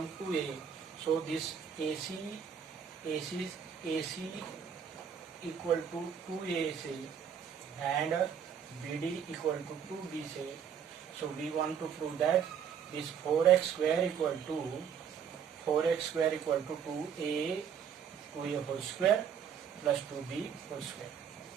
2A, so this AC equal to 2A say, and BD equal to 2B say. So we want to prove that this 4X square equal to 2A whole square plus 2B whole square.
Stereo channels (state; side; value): quieter; left; 7.8 dB